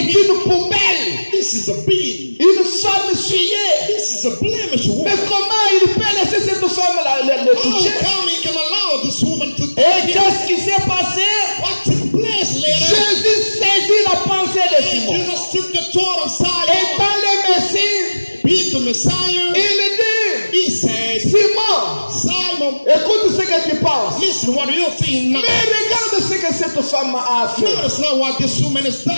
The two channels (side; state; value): both; inverted; correlation -1.00